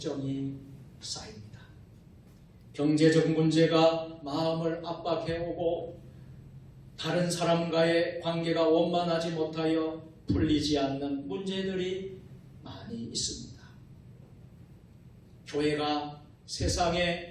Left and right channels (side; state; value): both; identical; correlation 1.00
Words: 쌓입니다. 경제적 문제가 마음을 압박해오고 다른 사람과의 관계가 원만하지 못하여 풀리지 않는 문제들이 많이 있습니다. 교회가